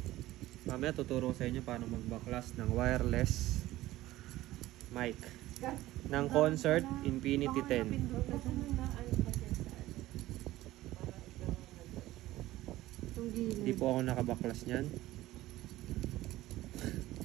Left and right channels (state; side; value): quieter; left; 16.3 dB